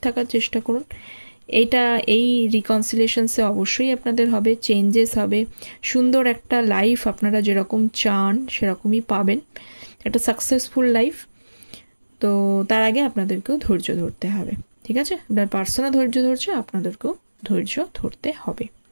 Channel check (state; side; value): inverted; both; correlation -1.00